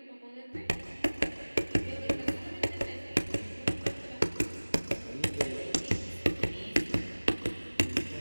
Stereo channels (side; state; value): both; inverted; correlation -1.00